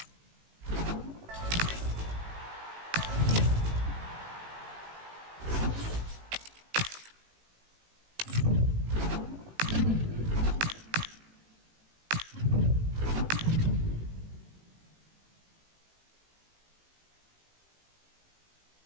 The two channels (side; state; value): left; late; 18 ms